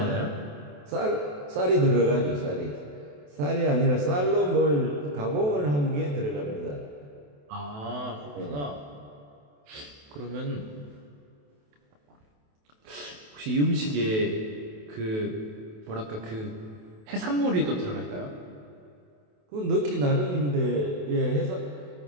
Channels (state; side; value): late; left; 28 ms